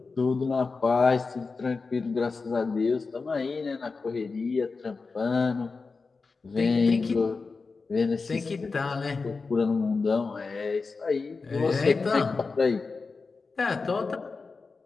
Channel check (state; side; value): quieter; right; 4.3 dB